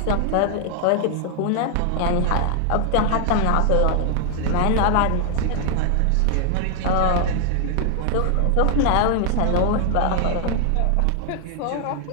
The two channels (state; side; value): different; both; correlation 0.00